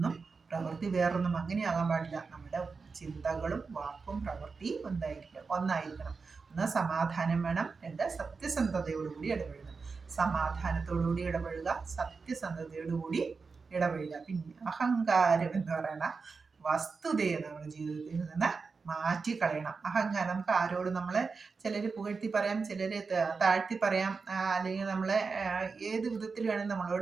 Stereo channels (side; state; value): left; quieter; 4.7 dB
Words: പ്രവൃത്തി വേറൊന്നും അങ്ങനെയാകാൻ പാടില്ല. നമ്മുടെ ചിന്തകളും വാക്കും പ്രവൃത്തിയും ഒന്നായിരിക്കണം. ഒന്ന് സമാധാനം വേണം, രണ്ട് സത്യസന്ധതയോടുകൂടി ഇടപഴകണം. സമാധാനത്തോടുകൂടി ഇടപഴകുക, സത്യസന്ധതയോടുകൂടി ഇടപഴകുക. പിന്നെ അഹങ്കാരം എന്ന് പറയുന്ന വസ്തുതയെ നമ്മുടെ ജീവിതത്തിൽ നിന്ന് മാറ്റിക്കളയണം. അഹങ്കാരം നമുക്ക് ആരോടും നമ്മളെ ചിലർ പുകഴ്ത്തി പറയാം, ചിലർ താഴ്ത്തി പറയാം, അല്ലെങ്കിൽ നമ്മളെ ഏത് വിധത്തിൽ വേണമെങ്കിൽ